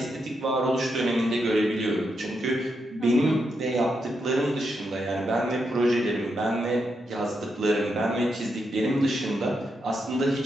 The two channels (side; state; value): both; normal; correlation 0.83